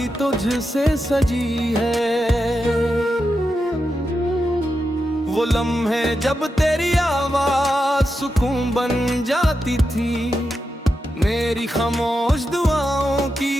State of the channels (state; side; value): normal; both; correlation 0.88